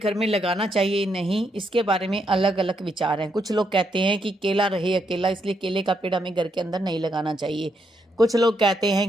में लगाना चाहिए नहीं, इसके बारे में अलग अलग विचार हैं। कुछ लोग कहते हैं कि केला रहे अकेला, इसलिए केले का पेड़ हमें घर के अंदर नहीं लगाना चाहिए। कुछ लोग कहते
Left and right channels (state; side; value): normal; both; correlation 0.77